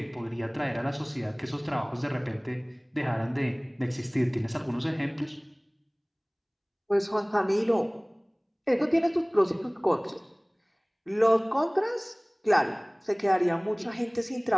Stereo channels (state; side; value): identical; both; correlation 1.00